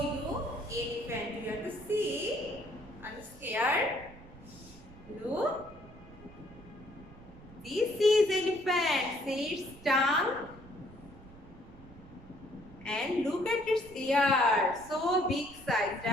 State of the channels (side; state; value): right; noise; rumble, 20 dB below the sound